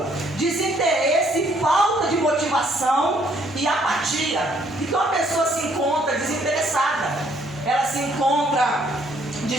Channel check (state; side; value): normal; both; correlation 0.66